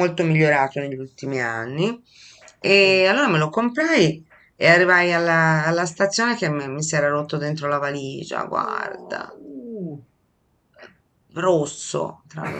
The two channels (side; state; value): both; identical; correlation 1.00